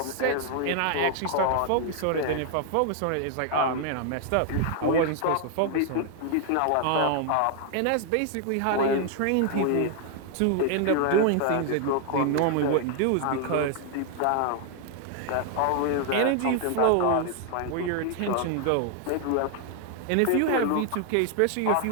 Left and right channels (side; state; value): both; different; correlation 0.00